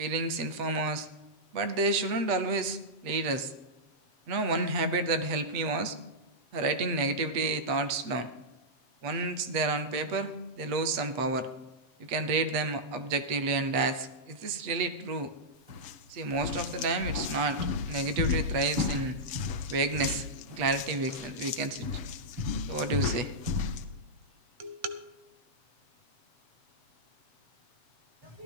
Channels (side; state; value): left; late; 8.3 ms